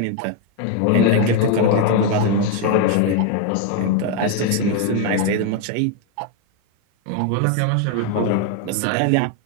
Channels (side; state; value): both; different; correlation 0.01